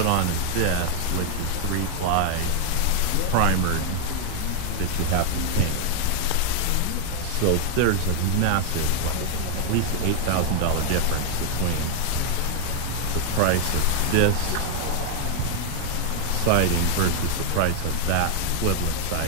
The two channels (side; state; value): both; different; correlation 0.00